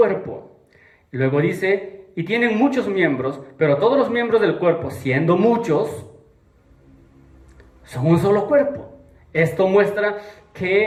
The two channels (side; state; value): both; identical; correlation 1.00